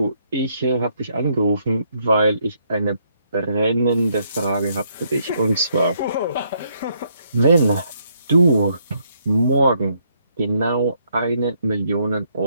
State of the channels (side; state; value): both; inverted; correlation -0.72